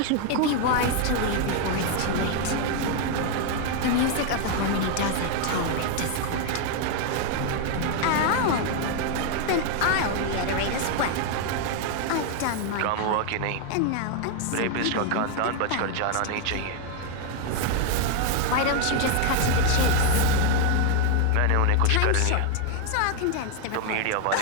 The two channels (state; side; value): different; both; correlation 0.00